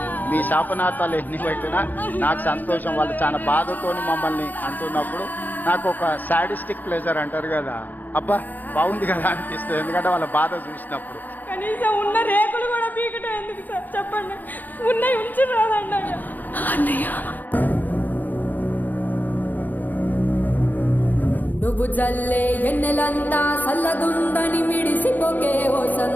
మీ శాపనార్థాలు ఎన్ని పెట్టినా నాకు సంతోషం. వాళ్ళు చాలా బాధతోని మమ్మల్ని అంటున్నప్పుడు నాకు ఒక సాడిస్టిక్ ప్లెజర్ అంటారు కదా, అబ్బా బాగుంది కదా అనిపిస్తుంది. ఎందుకంటే వాళ్ళ బాధ చూసినప్పుడు. కనీసం ఉన్న రేకులు కూడా పీకటం ఎందుకు సార్ చెప్పండి? ఉన్నాయి ఉంచి రాదండి అన్నయ్య. నువ్వు జల్లే ఎన్నెలంతా సల్లగుందని మిడిసిపోకే ఓ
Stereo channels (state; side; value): late; right; 0.085 ms